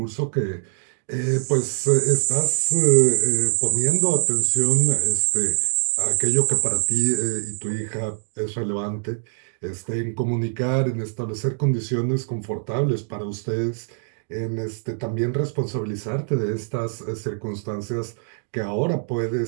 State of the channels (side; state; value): left; silent; 63 dB below the other